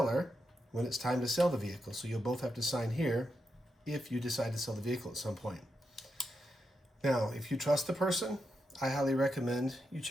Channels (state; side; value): normal; both; correlation 0.85